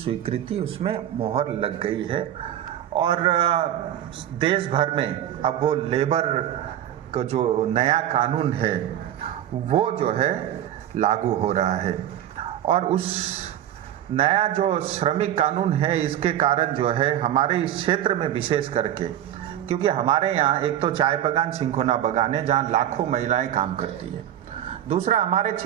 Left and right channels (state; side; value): quieter; left; 11.3 dB